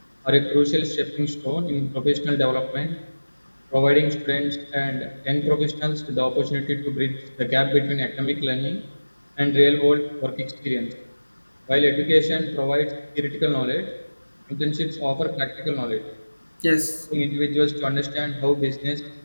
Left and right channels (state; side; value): inverted; both; correlation -1.00